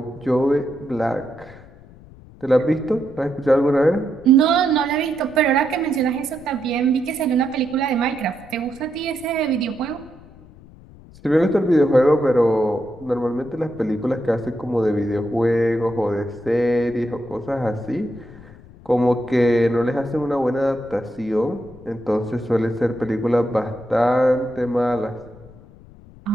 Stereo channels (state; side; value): noise; left; rumble, 22 dB below the sound